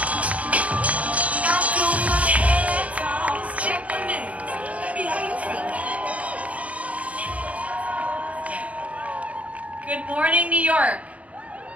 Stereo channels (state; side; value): late; left; 0.066 ms